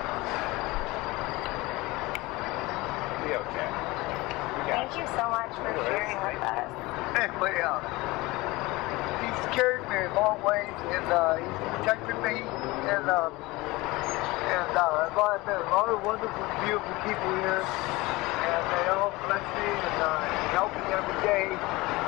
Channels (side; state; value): right; quieter; 21.5 dB